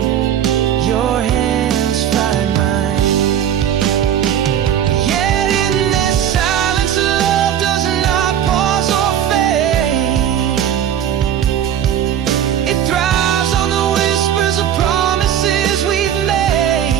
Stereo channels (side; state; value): left; quieter; 9.9 dB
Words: your hands find mine. Yet in this silence, love does not pause or fade. It thrives on the whispers of promises we've